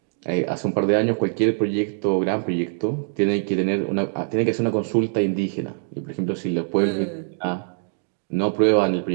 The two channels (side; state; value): left; silent; digital silence